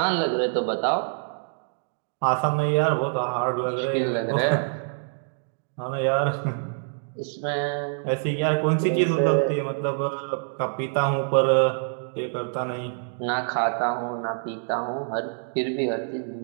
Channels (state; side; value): silent; left; digital silence